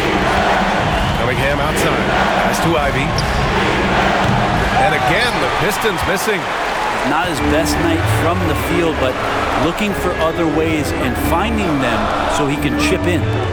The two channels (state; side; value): identical; both; correlation 1.00